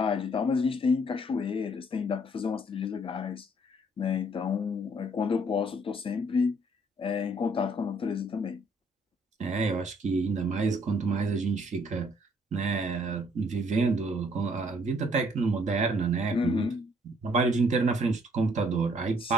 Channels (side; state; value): both; normal; correlation 0.64